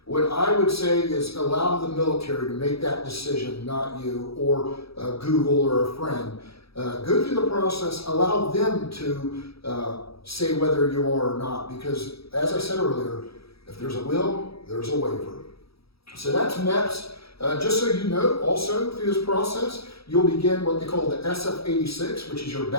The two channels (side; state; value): right; late; 0.77 ms